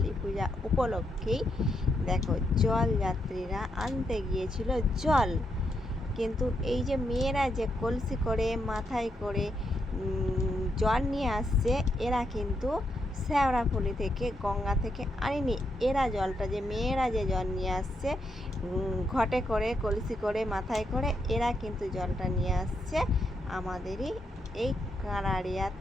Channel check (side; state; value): both; normal; correlation 0.80